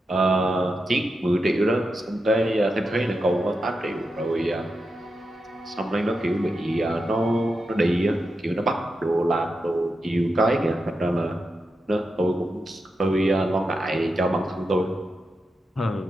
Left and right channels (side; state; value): both; normal; correlation 0.88